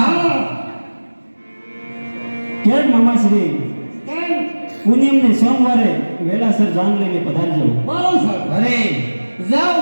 કેમ મામાશ્રી કેમ પૂનમને સોમવારે વેલાસર જાન લઈને પધારજો. બહુ સરસ. અરે જાઓ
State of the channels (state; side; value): inverted; both; correlation -1.00